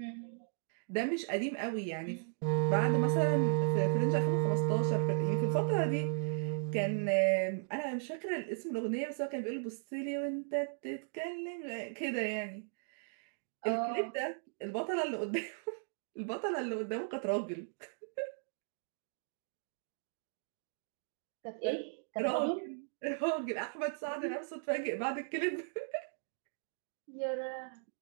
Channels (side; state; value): left; silent; digital silence